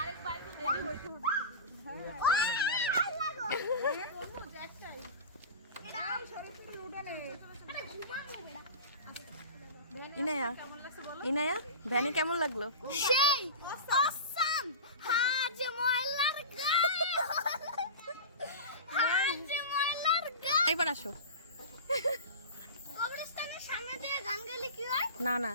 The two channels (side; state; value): both; inverted; correlation -0.30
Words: বাইক রেডি হইতে হবে। ইনায়া, ইনায়া ভ্যানে কেমন লাগলো? সেই অসাম। হাজ ময়লার গায়ে, হাজ ময়লার গায়ে। এবার আসো। কবরস্থানের সামনে দিয়ে গান গাইলে কি হয়? না না,